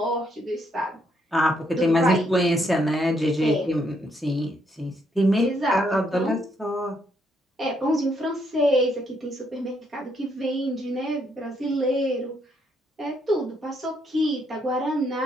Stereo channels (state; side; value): normal; both; correlation 0.74